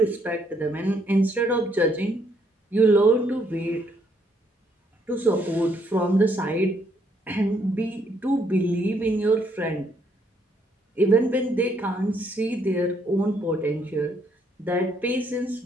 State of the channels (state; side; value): normal; both; correlation 0.71